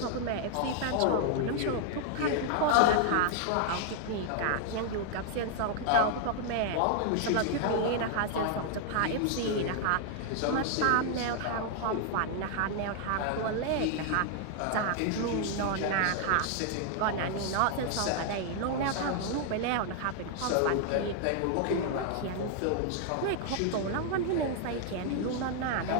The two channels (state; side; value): different; both; correlation 0.00